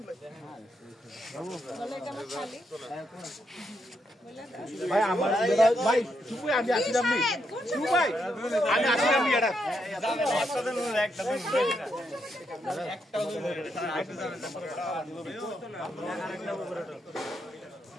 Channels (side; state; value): both; normal; correlation 0.80